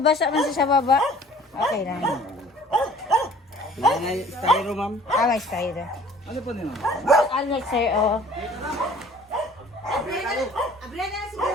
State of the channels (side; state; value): both; normal; correlation 0.51